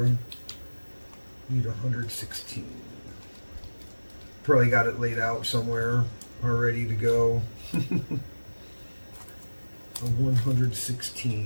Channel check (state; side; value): inverted; both; correlation -1.00